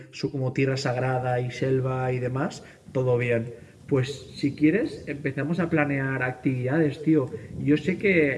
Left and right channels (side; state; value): both; identical; correlation 1.00